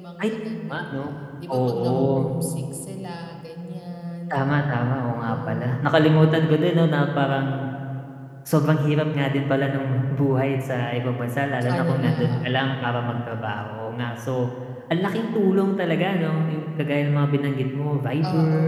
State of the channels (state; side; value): identical; both; correlation 1.00